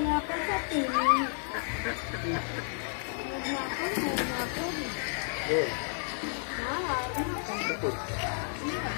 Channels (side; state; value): right; silent; 57 dB below the other